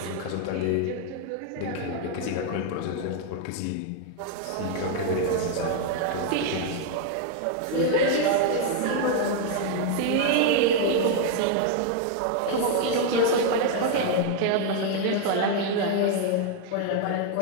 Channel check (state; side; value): different; both; correlation 0.00